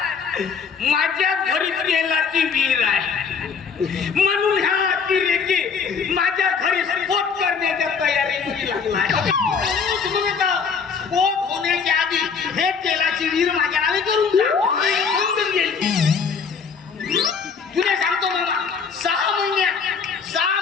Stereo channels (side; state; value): right; quieter; 5.8 dB